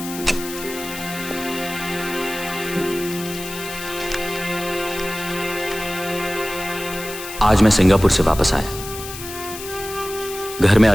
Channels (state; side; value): noise; left; hiss, 11 dB below the sound